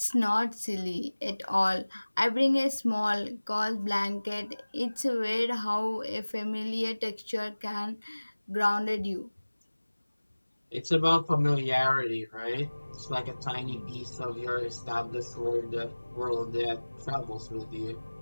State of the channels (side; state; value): both; inverted; correlation -1.00